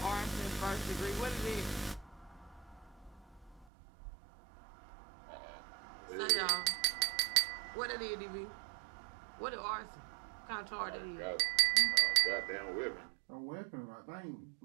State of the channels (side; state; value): left; drops out; at 3.7 s